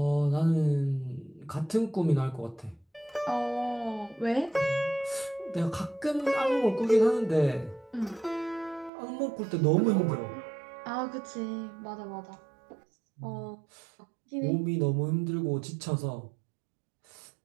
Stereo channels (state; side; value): drops out; left; at 8.9 s